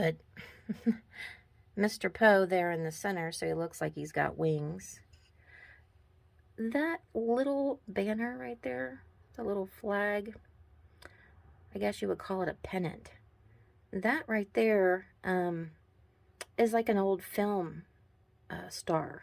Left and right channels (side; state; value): both; identical; correlation 1.00